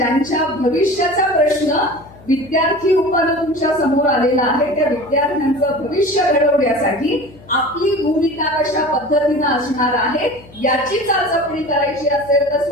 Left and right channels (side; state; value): left; noise; hum, 23 dB below the sound